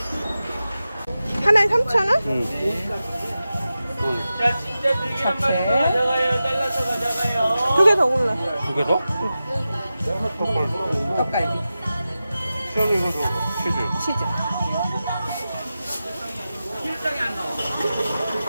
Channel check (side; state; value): both; inverted; correlation -0.93